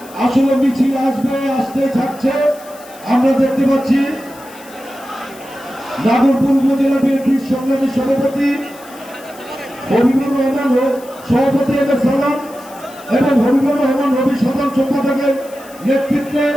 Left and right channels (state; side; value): noise; left; hiss, 22 dB below the sound